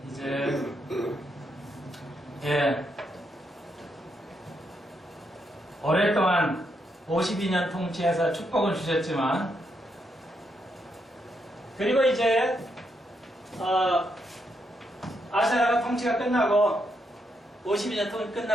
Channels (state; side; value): normal; both; correlation 0.79